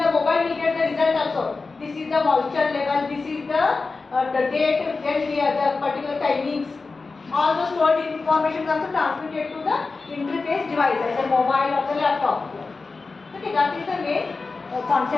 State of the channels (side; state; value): right; quieter; 4.0 dB